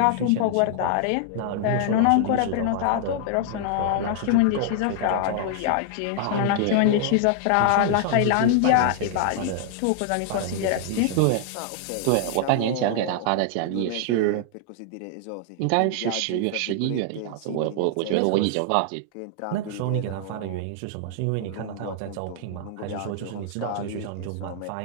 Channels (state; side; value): different; both; correlation 0.00